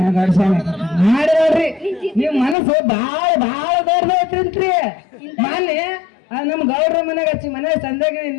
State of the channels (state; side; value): drops out; right; at 2.6 s